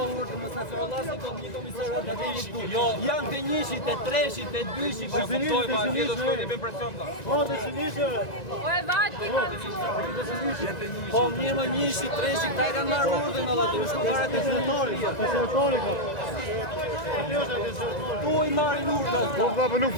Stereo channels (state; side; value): late; right; 1.9 ms